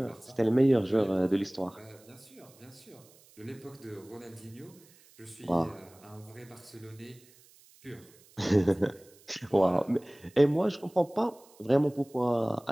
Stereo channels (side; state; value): right; noise; hiss, 27 dB below the sound